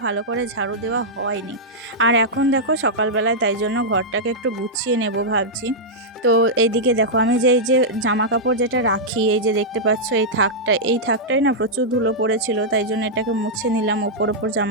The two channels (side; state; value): both; normal; correlation -0.08